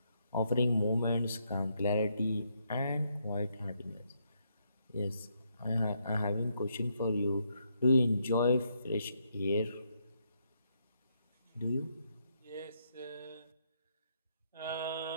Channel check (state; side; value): inverted; both; correlation -0.76